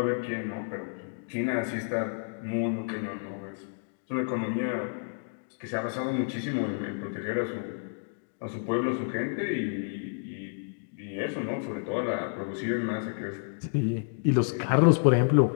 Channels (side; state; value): right; silent; digital silence